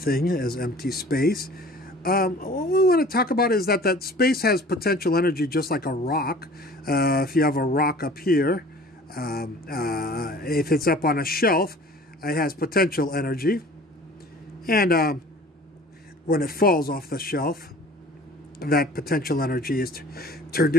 as empty space. What we want to talk about is that space has potential energy just like a rock. If you have a rock up here, if it's up on a shelf, it has potential energy. And when it falls off the shelf, that potential energy is turned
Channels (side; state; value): both; normal; correlation 0.47